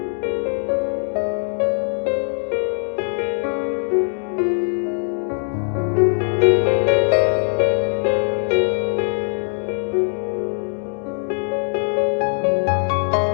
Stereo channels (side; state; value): right; silent; 59 dB below the other